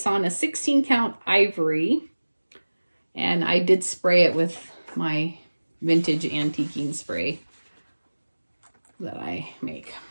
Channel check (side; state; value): both; inverted; correlation -1.00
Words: on a 16 count ivory. And I did spray it with my vintage antiquing spray that I make.